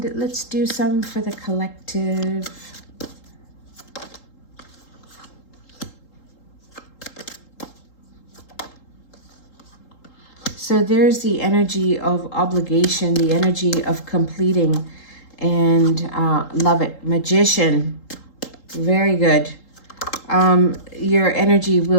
let's do some for the collective. So there's the energy of obligation, the energy of completing, and love it. Magician, very good. Your energy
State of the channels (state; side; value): late; right; 3.8 ms